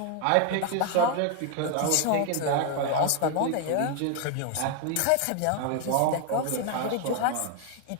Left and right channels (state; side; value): different; both; correlation 0.01